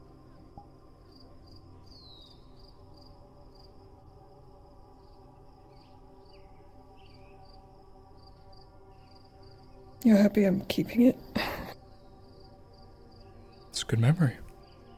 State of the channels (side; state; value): both; identical; correlation 1.00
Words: You're happy I'm keeping it? It's a good memory.